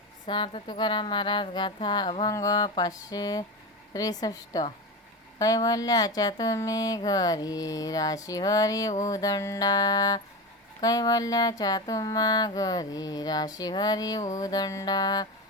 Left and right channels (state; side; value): normal; both; correlation 0.21